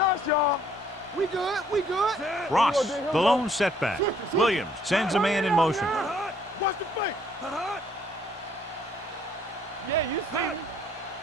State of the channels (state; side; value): normal; both; correlation 0.64